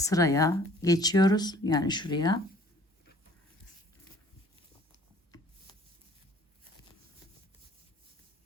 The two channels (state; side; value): normal; both; correlation 0.54